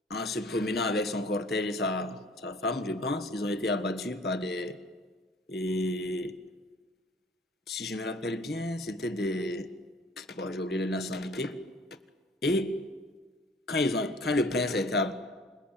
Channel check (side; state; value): both; normal; correlation 0.51